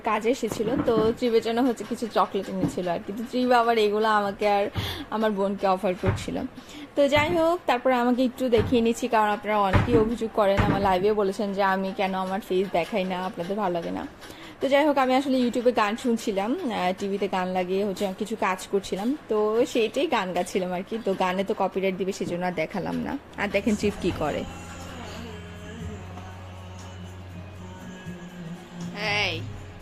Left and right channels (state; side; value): identical; both; correlation 1.00